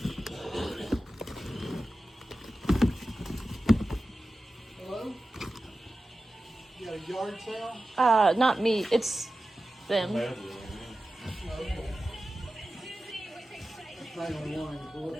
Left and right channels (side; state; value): both; normal; correlation 0.94